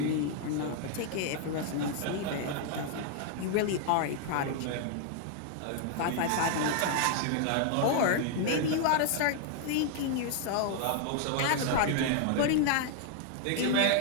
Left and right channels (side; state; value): both; different; correlation 0.00